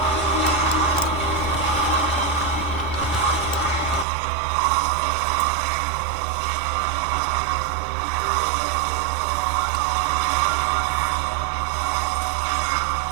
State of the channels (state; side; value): drops out; left; at 4.0 s